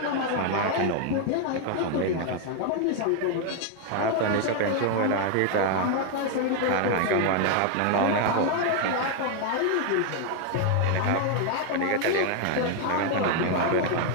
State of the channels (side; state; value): both; different; correlation 0.01